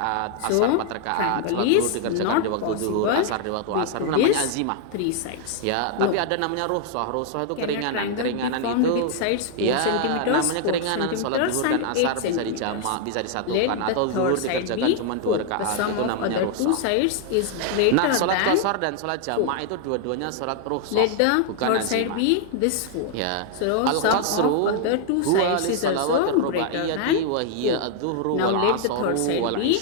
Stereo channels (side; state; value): both; different; correlation 0.00